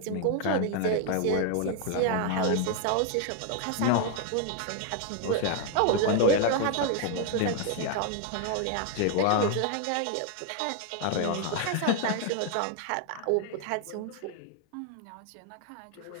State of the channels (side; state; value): both; different; correlation 0.01